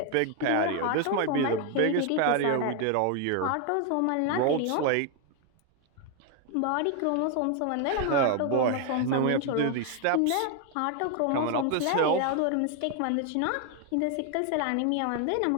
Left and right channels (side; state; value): both; different; correlation 0.01